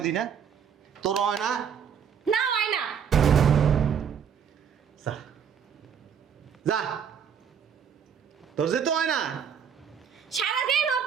দি না? তোর হয় না? না হয় না। যা যা, তোর যেতে হয় না? সারাদিন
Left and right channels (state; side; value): quieter; left; 7.6 dB